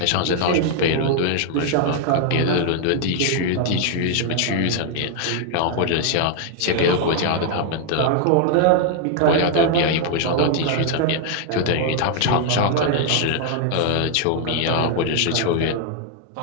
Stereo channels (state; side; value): different; both; correlation 0.00